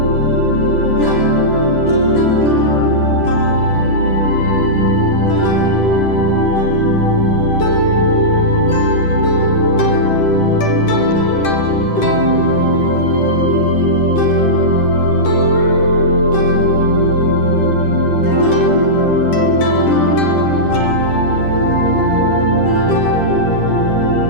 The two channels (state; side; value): late; right; 10 ms